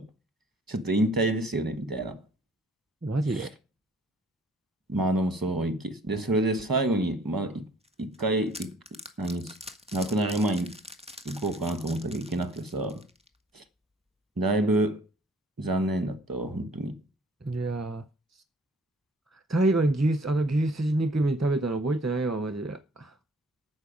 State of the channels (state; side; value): normal; both; correlation 0.56